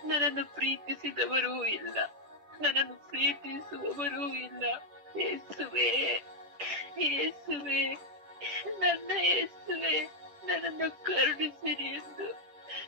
ನನ್ನನ್ನು ಪ್ರೀತಿಸಿದವರೂ ಇಲ್ಲ, ನನ್ನನ್ನು ಪ್ರೀತಿಸುವವರೂ ಇಲ್ಲ. ಯೇಸುವೆ, ಯೇಸುವೆ, ನನ್ನ ಯೇಸುವೆ, ನನ್ನನ್ನು ಕರುಣಿಸಿರಿ ಎಂದು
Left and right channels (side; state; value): left; late; 10 ms